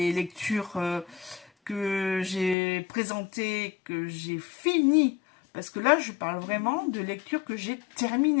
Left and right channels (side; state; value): right; drops out; at 2.6 s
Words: lectures que j'ai présentées, que j'ai finies, parce que là je parle vraiment de lectures que j'ai